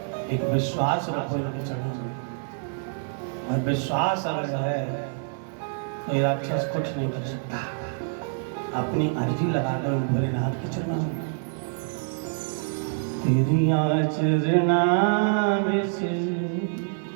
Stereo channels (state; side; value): silent; left; digital silence